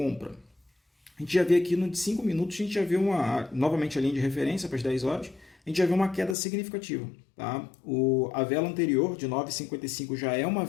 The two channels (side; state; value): right; drops out; at 6.4 s